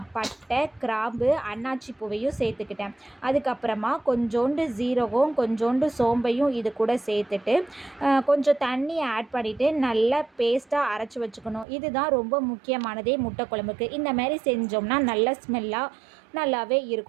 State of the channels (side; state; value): left; drops out; at 11.7 s